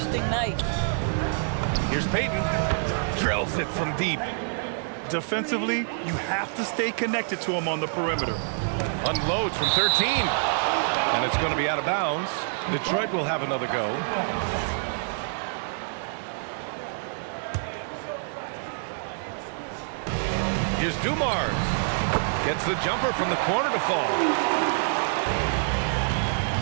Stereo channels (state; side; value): silent; left; digital silence